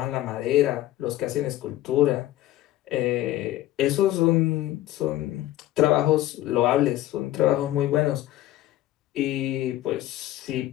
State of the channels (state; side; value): quieter; right; 14.9 dB